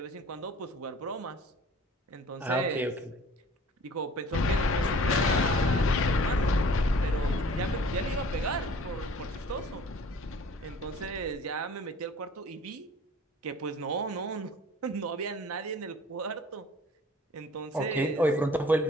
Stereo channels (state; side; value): normal; both; correlation 0.49